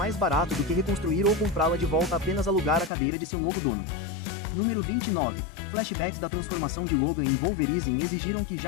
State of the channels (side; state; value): right; drops out; at 2.9 s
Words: barato do que reconstruir ou comprá-la de volta apenas alugar a cadeira de seu novo dono. Número 29. Flashbacks da transformação de Logan em Wolverine exigiram que